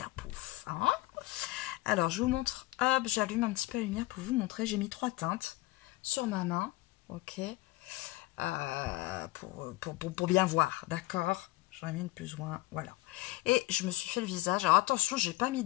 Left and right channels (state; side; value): quieter; right; 19.8 dB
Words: Hein. Alors je vous montre, hop, j'allume un petit peu la lumière pour vous montrer. J'ai mis 3 teintes sur ma main, ok, pour bien voir, d'accord. J'en ai mis une plus ou moins, voilà. Et je me suis fait le visage. Alors attention, j'ai pas mis